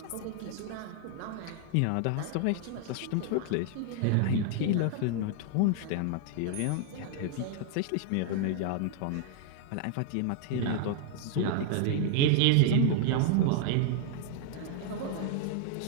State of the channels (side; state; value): both; different; correlation 0.00